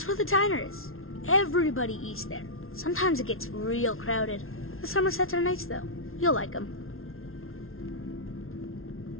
where the diner is. Everybody eats there. Sometimes it gets real crowded. The Somersets are nice though. You'll like them.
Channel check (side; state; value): right; late; 0.61 ms